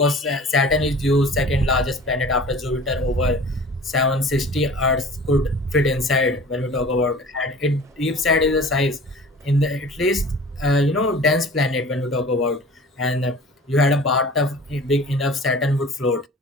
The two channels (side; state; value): both; normal; correlation 0.43